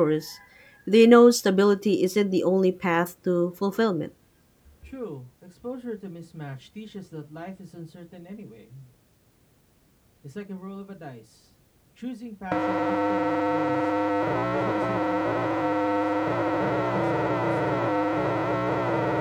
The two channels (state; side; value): identical; both; correlation 1.00